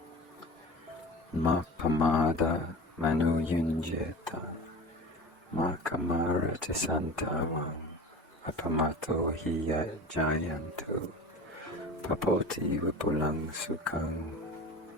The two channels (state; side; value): normal; both; correlation 0.35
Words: Ma pamada manu yunjeta, ma kamara tisantavam, apamato hiya jayantu, papoti vipulang sukhang.